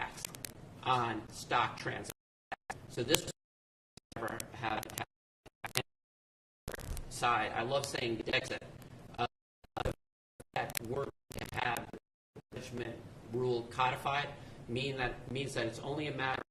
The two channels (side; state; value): both; identical; correlation 1.00